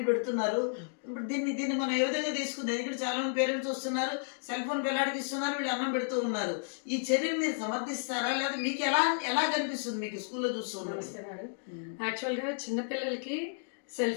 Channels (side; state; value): right; silent; digital silence